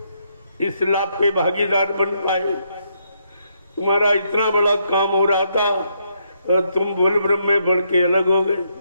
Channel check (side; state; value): both; inverted; correlation -0.75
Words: इस लाभ के भागीदार बन पाए? तुम्हारा इतना बड़ा काम हो रहा था और तुम बोल ब्रह्म में बढ़ के अलग हो गए,